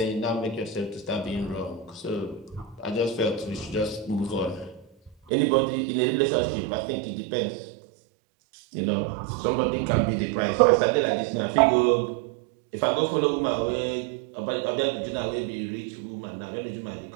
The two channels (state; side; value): drops out; left; at 5.2 s